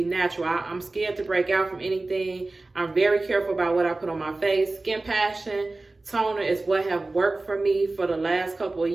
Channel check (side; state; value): left; quieter; 3.2 dB